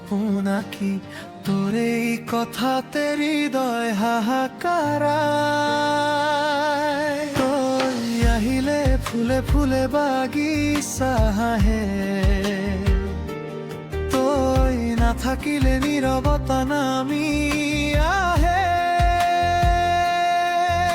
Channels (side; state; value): both; identical; correlation 1.00